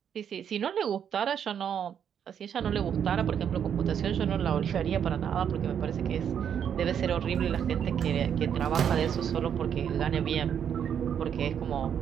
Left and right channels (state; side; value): quieter; left; 8.4 dB